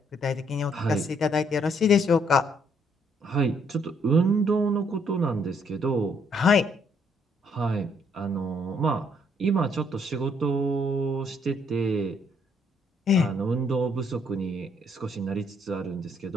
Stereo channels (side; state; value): both; normal; correlation 0.69